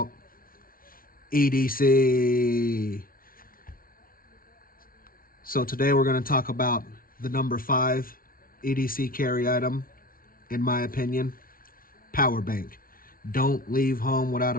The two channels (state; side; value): late; right; 0.42 ms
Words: EDC. So today we're going to talk about the number 5 EDC carry item, in my opinion, PowerBank. Don't leave home without